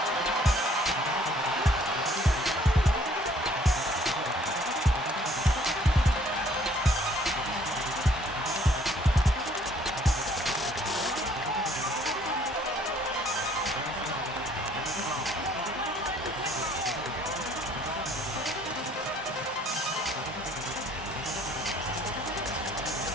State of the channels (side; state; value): both; normal; correlation 0.60